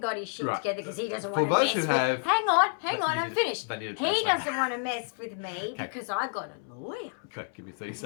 his shit together because he doesn't want to mess with. Hang on, I'm finished. He doesn't want to mess with me because I got a lawyer. Okay, give me 30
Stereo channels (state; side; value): silent; right; 58 dB below the other